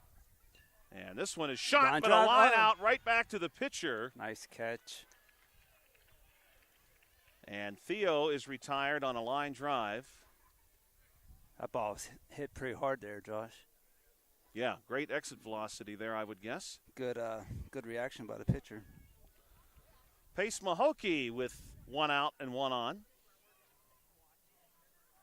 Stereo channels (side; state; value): both; identical; correlation 1.00